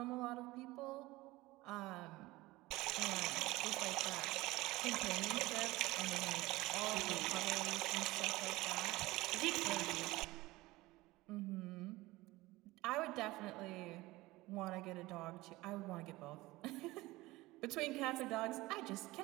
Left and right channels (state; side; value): quieter; left; 19.6 dB